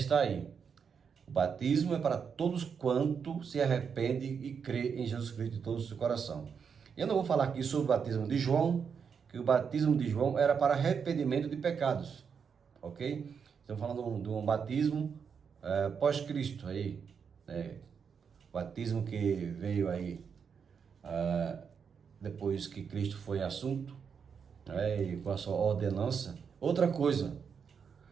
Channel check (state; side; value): quieter; left; 6.5 dB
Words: aí. O batismo é para todos quanto se arrepende e crê em Jesus Cristo de todo o seu coração. Eu não vou falar aqui sobre o batismo de João, que o batismo de João era para arrependimento de pecados, ok? Estamos falando de um batismo pós-Cristo aí, né? Batismo que veio aí depois que Cristo foi assunto, né? E com a sua ordenança. Outra coisa,